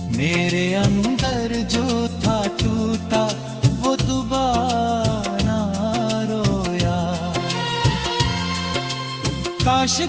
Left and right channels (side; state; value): both; identical; correlation 1.00